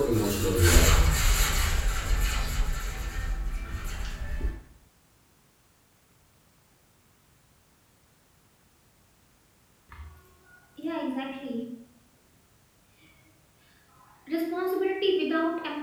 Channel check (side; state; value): both; identical; correlation 1.00